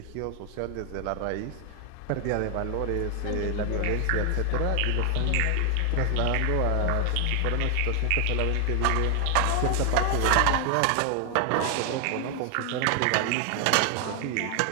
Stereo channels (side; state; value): both; different; correlation 0.00